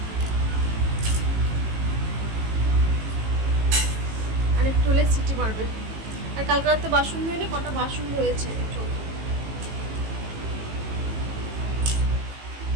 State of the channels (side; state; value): left; late; 18 ms